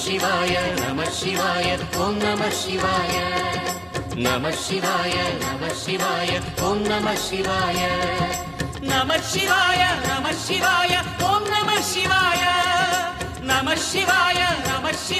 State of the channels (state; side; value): identical; both; correlation 1.00